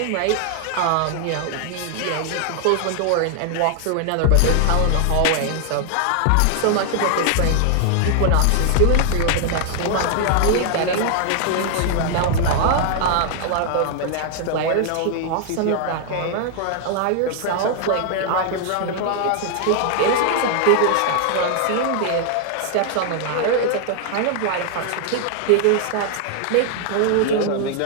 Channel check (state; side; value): different; both; correlation 0.00